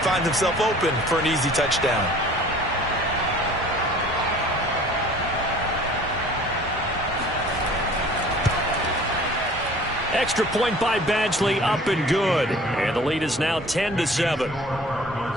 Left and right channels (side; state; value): both; normal; correlation 0.48